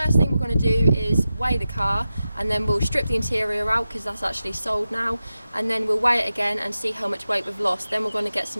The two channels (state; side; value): inverted; both; correlation -0.93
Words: thing we're going to do is weigh the car, and then we'll strip the interior out because that's actually sold now, and then we'll weigh it again and see how much weight we've lost. Then we're going to get